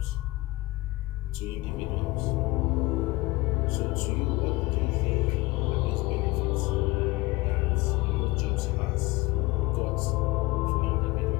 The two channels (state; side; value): quieter; right; 21.0 dB